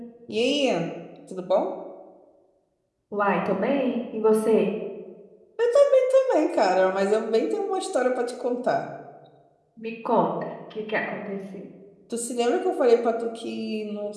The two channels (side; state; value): both; identical; correlation 1.00